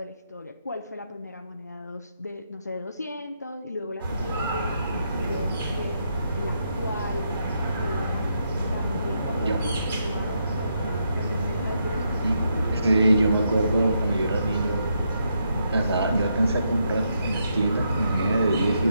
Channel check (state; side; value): inverted; both; correlation -0.79